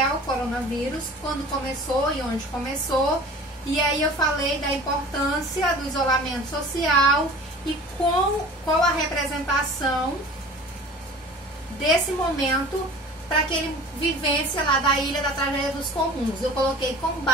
o coronavírus, quando começou e onde começou, e aí eu falei da importância do isolamento social e qual a representação desse momento para aquele vivência lá da ilha da tragédia dos comuns. Eu coloquei com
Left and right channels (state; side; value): normal; both; correlation 0.42